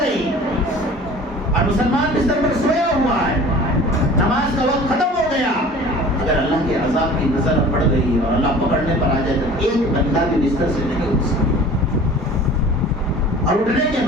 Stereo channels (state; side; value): normal; both; correlation 0.44